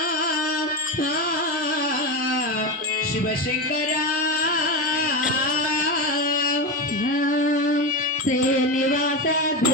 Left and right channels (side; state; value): both; normal; correlation 0.17